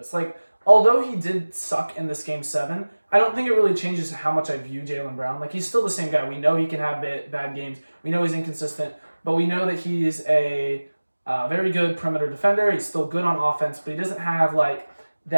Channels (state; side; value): inverted; both; correlation -1.00